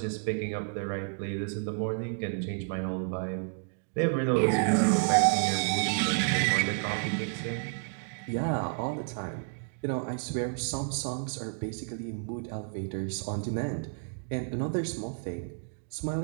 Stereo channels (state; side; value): silent; left; digital silence